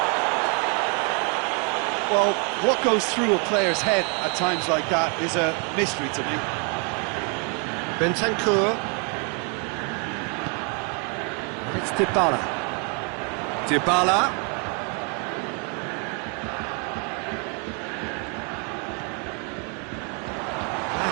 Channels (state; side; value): quieter; left; 36.9 dB